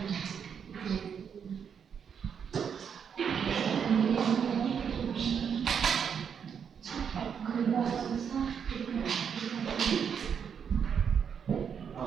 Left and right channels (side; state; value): left; quieter; 7.3 dB